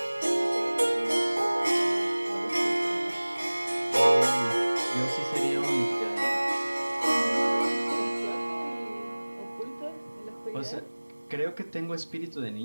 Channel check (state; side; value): inverted; both; correlation -1.00